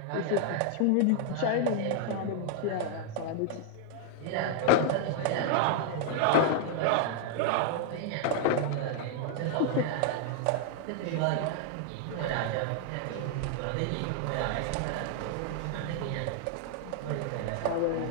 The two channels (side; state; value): both; different; correlation 0.00